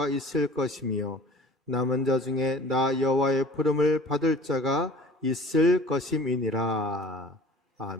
있을 것이며 남은 자 중에 나 여호와의 부름을 받을 자가 있을 것임이니라.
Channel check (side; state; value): both; normal; correlation 0.46